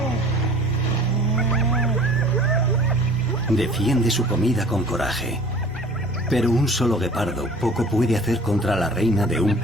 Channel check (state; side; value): normal; both; correlation 0.47